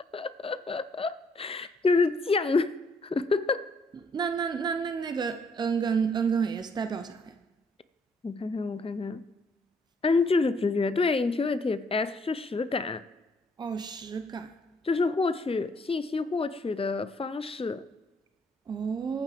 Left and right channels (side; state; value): both; normal; correlation 0.68